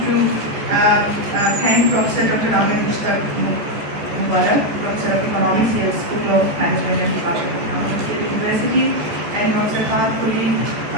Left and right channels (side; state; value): left; late; 14 ms